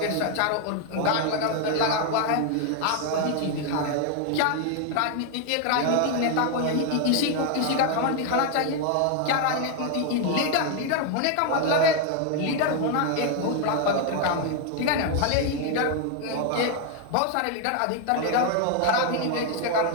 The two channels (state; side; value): different; both; correlation 0.01